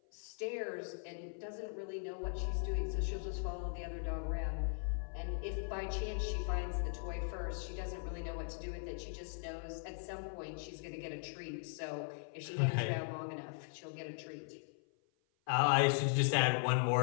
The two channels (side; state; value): right; silent; 52 dB below the other